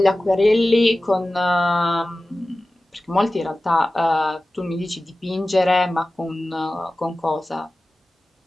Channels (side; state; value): both; normal; correlation 0.96